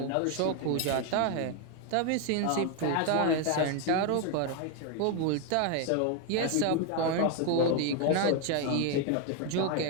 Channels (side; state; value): both; different; correlation 0.01